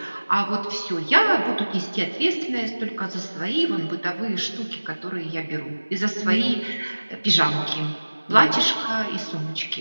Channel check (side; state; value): both; inverted; correlation -1.00